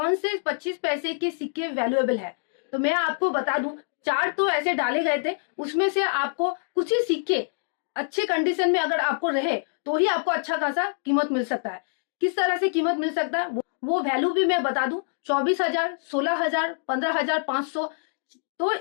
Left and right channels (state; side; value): silent; right; digital silence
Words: से 25 पैसे के सिक्के वैल्यूएबल है। तो मैं आपको बता दूं, 4 तो ऐसे डाले गए थे, उसमें से आपको कुछ ही सिक्के अच्छे कंडीशन में अगर आपको रहे तो ही आपको अच्छा खासा कीमत मिल सकता है। किस तरह से कीमत मिल सकता है वो वैल्यू भी मैं बता दूं। 24,000, 16,000, 15,500, तो